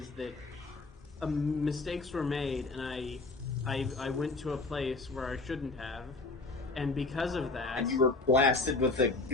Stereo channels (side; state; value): right; quieter; 3.5 dB